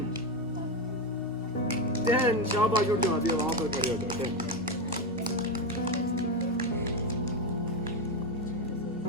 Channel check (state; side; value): normal; both; correlation 0.12